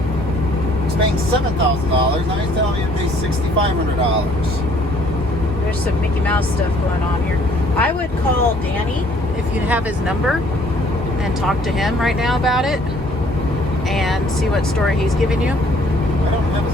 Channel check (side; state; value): both; normal; correlation 0.60